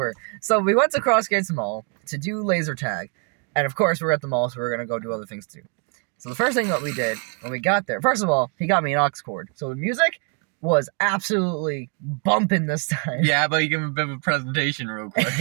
So we went to Crossgates Mall to do laser tag. And of course, we're at the mall, so we're going to go do other things too. So the first thing that we did when we got there, first of all, he got me an aux cord. So the music was absolutely bumping this time. Yeah, but you give him a bit of a presentation real quick.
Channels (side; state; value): left; quieter; 37.7 dB